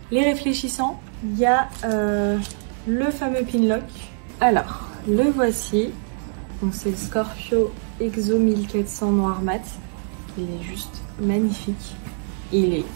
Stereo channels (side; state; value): left; silent; digital silence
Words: les réfléchissants. Il y a le fameux pin lock. Alors, le voici. Donc c'est le Scorpio Exo 1400 noir mat. Il est juste magnifique. Il est